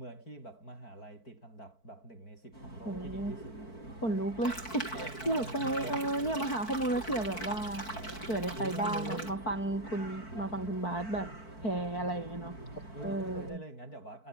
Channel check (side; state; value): right; late; 4.5 ms